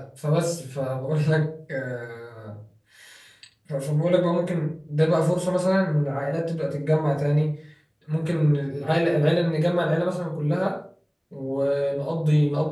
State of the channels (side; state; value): both; identical; correlation 1.00